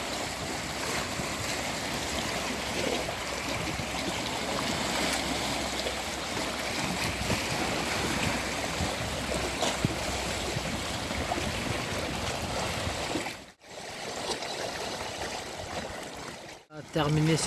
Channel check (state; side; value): identical; both; correlation 1.00